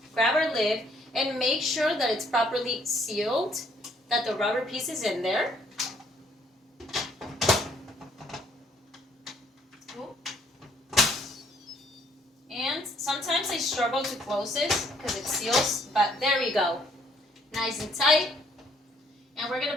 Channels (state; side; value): normal; both; correlation 0.65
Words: grab our lid, and make sure that it's properly sealed, that the rubber piece is in there. And sometimes I struggle to close this because it seals, but there we go. Nice and tight. And we're going